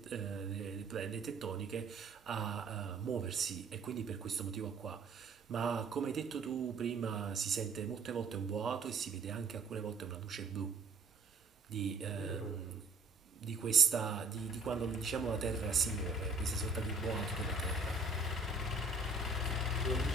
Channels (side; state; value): left; quieter; 3.7 dB